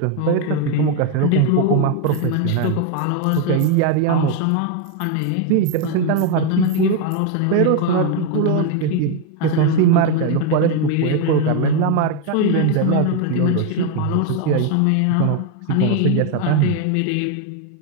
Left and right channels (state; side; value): different; both; correlation 0.01